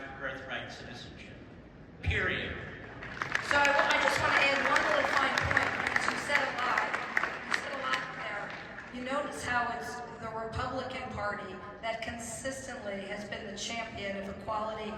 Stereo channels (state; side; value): identical; both; correlation 1.00